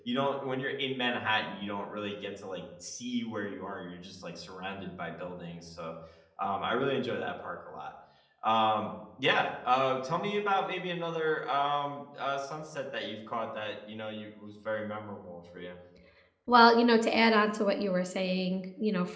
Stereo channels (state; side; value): identical; both; correlation 1.00